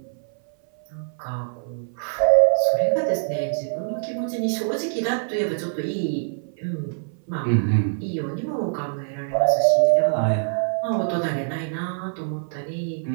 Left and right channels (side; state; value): left; silent; 58 dB below the other